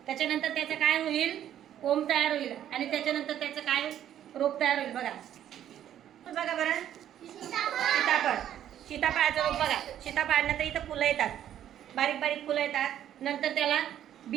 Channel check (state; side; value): quieter; left; 10.9 dB